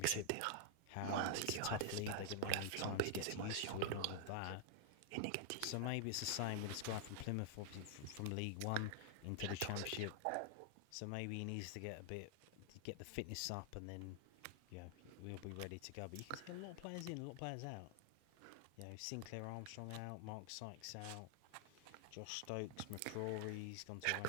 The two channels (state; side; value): different; both; correlation -0.01